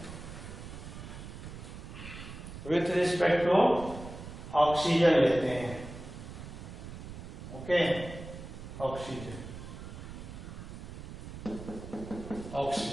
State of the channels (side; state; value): right; noise; rumble, 11 dB below the sound